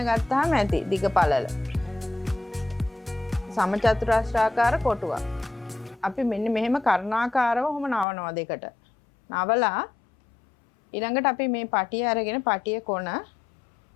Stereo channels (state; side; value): drops out; right; at 8.1 s